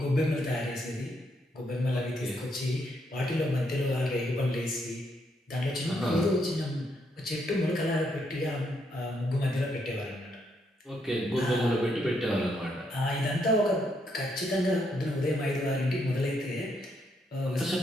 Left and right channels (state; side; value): normal; both; correlation 0.76